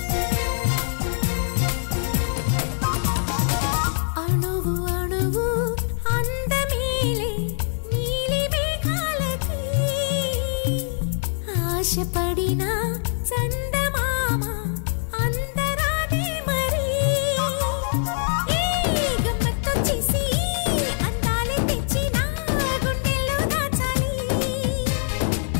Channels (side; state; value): right; silent; digital silence